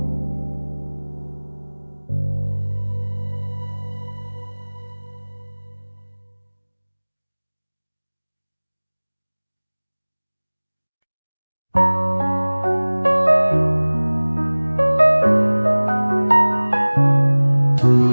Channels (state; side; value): inverted; both; correlation -1.00